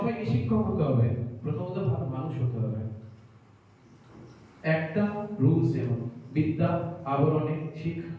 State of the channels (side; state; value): both; identical; correlation 1.00